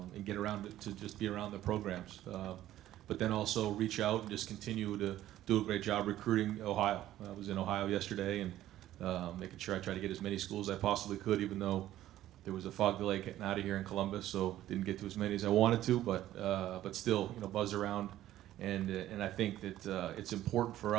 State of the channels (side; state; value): left; quieter; 13.6 dB